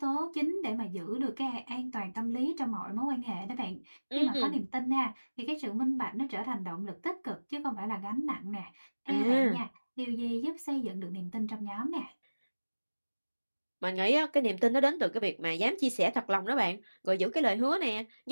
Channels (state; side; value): inverted; both; correlation -1.00